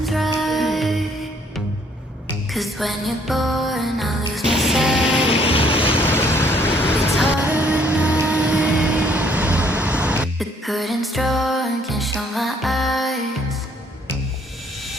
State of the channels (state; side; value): normal; both; correlation 0.64